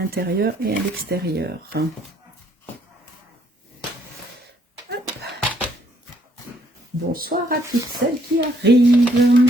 et à l'extérieur. Bonsoir à toutes celles qui arrivent.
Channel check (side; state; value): both; normal; correlation 0.67